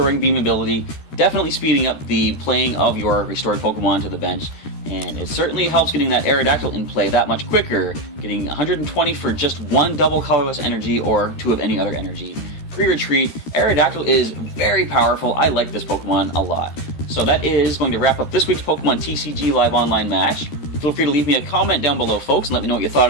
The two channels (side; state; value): right; late; 13 ms